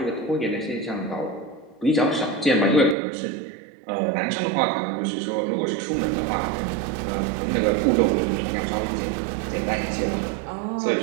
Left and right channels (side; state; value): left; drops out; at 3.0 s